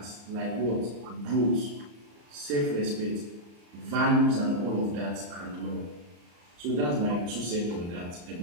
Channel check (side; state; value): left; late; 34 ms